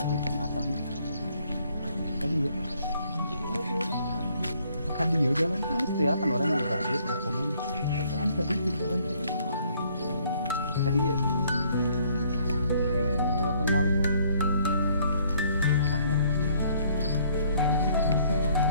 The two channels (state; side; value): inverted; both; correlation -0.65